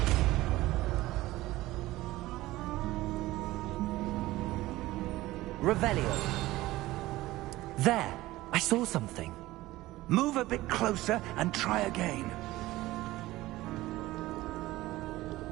Revelio. There! I saw something. Move a bit closer and try again.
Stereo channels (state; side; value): quieter; left; 17.5 dB